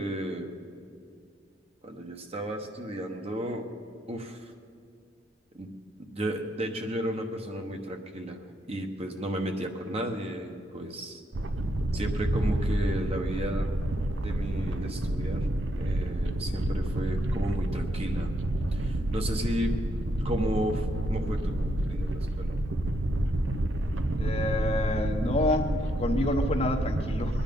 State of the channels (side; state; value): both; normal; correlation 0.77